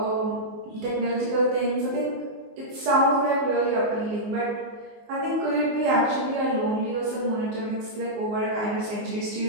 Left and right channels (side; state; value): left; late; 19 ms